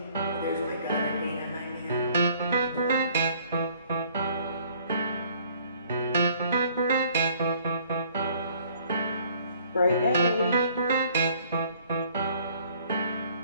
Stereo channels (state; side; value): inverted; both; correlation -0.59